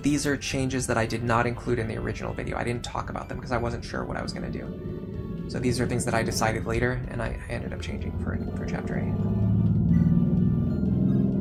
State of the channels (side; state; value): both; identical; correlation 1.00